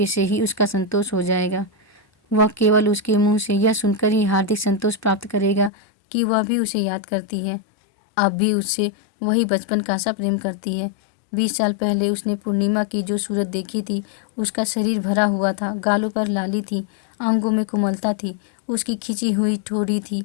से ही उसका संतोष हो जाएगा। वह केवल उसके मुंह से यह सुनकर ही हार्दिक संतोष प्राप्त करेगा कि वह भी उसे याद करती है, अब भी उससे वही बचपन का सा प्रेम करती है। 20 साल पहले उसने पूर्णिमा की जो सूरत देखी थी, उसका शरीर भरा हुआ था, गालों पर लाली थी, अंगों में कोमलता थी, उसकी खिंची हुई ठोड़ी थी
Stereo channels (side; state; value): right; drops out; at 5.7 s